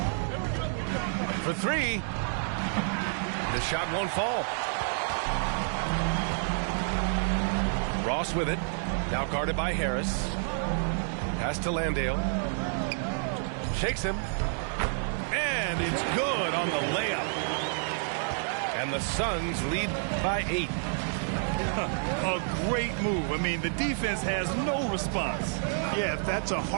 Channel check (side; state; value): left; silent; 58 dB below the other